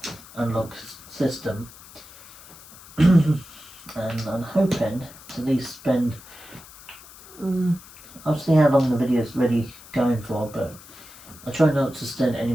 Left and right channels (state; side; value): noise; left; hiss, 19 dB below the sound